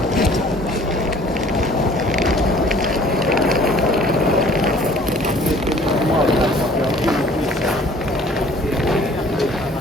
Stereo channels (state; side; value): normal; both; correlation 0.53